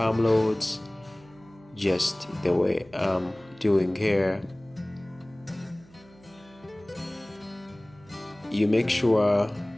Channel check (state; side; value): noise; right; hum, 26 dB below the sound